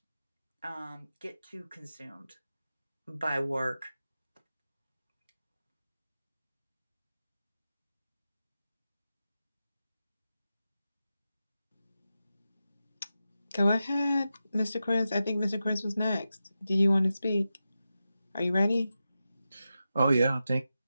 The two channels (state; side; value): inverted; both; correlation -0.91